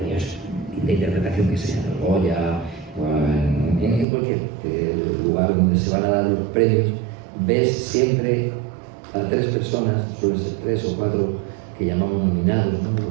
de interpretación que sean, en Goya, o en cualquier lugar donde se van a dar los premios, ves siempre a 3 personas, suelen ser 3 o 4, que llamamos nominados, ¿no?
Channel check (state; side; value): drops out; left; at 4.0 s